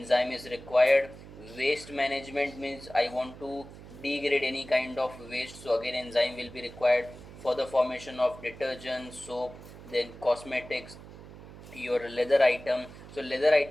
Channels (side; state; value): right; noise; hum, 16 dB below the sound